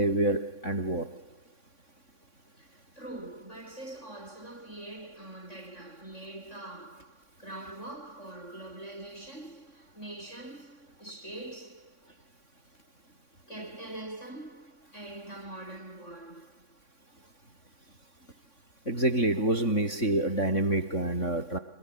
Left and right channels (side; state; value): right; late; 3.6 ms